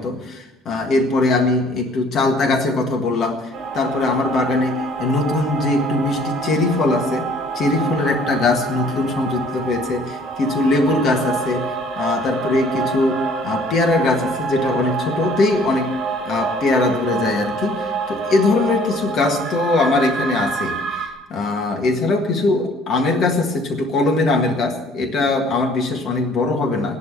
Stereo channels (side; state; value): both; normal; correlation 0.56